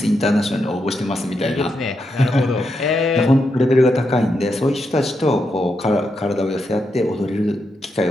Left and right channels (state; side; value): normal; both; correlation 0.83